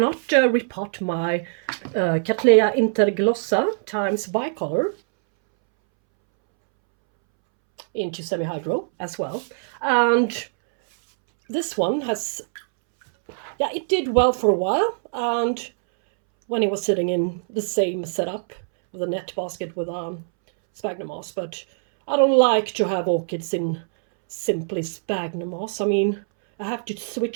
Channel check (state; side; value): silent; left; 63 dB below the other